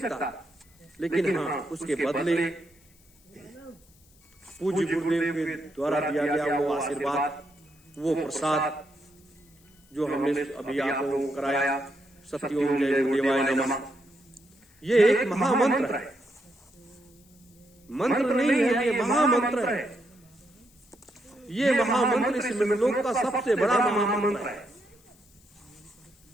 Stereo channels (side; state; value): left; noise; hiss, 30 dB below the sound